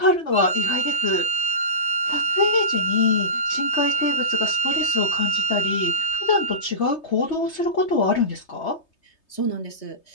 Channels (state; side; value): late; right; 3.2 ms